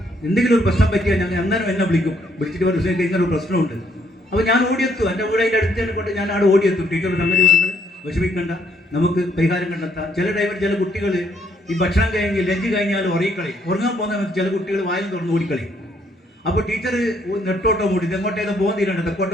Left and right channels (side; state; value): both; normal; correlation 0.70